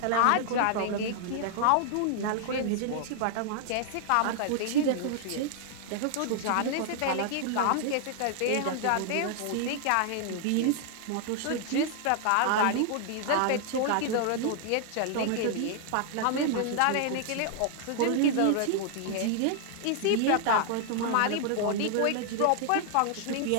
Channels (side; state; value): both; different; correlation 0.00